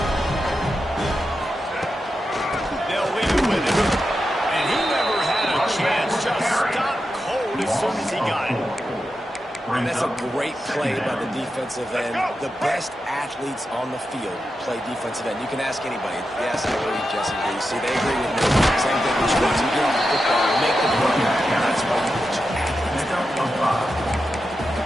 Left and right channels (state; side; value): normal; both; correlation 0.89